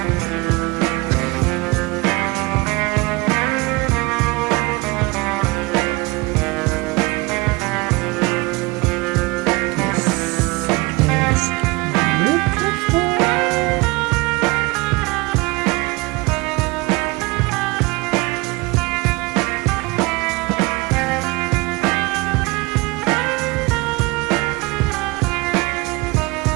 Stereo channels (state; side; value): quieter; left; 24.8 dB